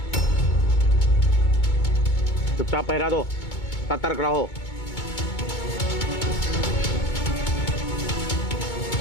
चुपचाप पहरा दो, सतर्क रहो।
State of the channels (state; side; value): late; right; 2.2 ms